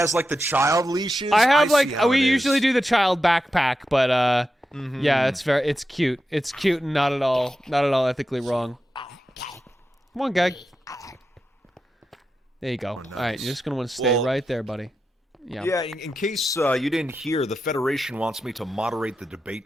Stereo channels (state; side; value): normal; both; correlation 0.89